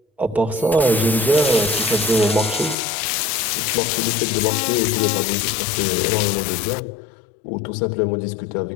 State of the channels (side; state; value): right; drops out; at 2.8 s